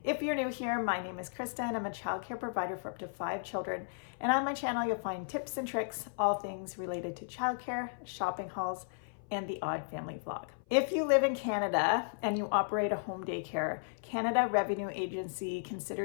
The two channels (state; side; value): silent; right; 55 dB below the other